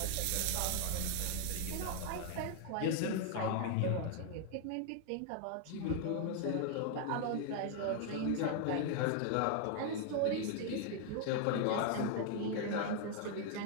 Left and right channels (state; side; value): different; both; correlation 0.00